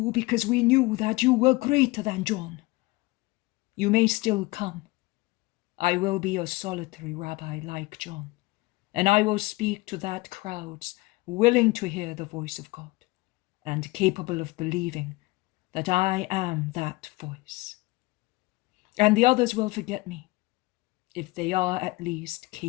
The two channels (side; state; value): right; quieter; 22.2 dB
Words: because we knew that you were greater than John. You may still come. I will be a solitary rabbi like John, and I will speak to that crowds willing to hear the voice of God and capable of believing that I am that voice. And the others will forget me, if they are at least